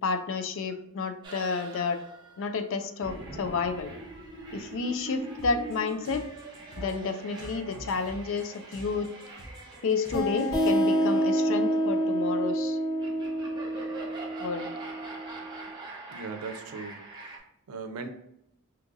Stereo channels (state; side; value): normal; both; correlation 0.30